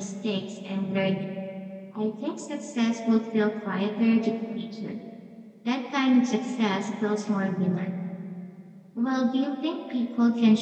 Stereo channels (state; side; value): identical; both; correlation 1.00